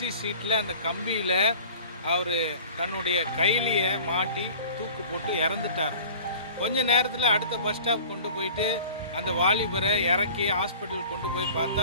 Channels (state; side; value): inverted; both; correlation -0.43